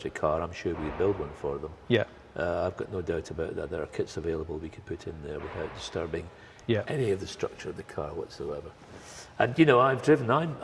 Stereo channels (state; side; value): identical; both; correlation 1.00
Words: car, I'm sure we could build one for them. Yeah. I've got no doubt about that. There are kits available we could put in there without disturbing any of the structure of the car whatsoever. And you know,